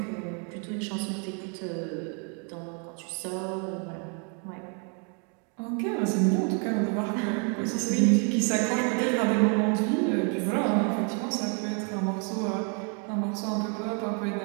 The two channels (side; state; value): left; quieter; 38.8 dB